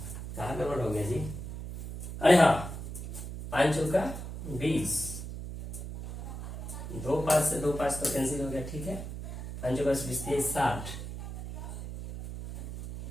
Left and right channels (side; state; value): right; noise; hum, 8 dB below the sound